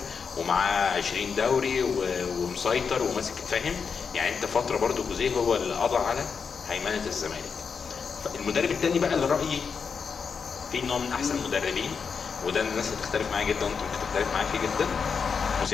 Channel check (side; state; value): right; quieter; 5.9 dB